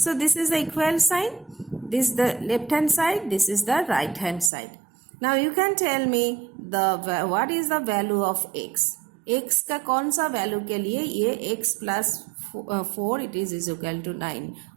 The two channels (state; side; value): drops out; left; at 4.5 s